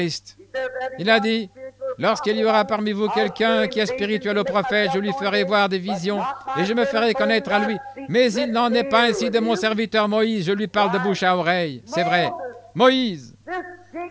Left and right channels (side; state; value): both; identical; correlation 1.00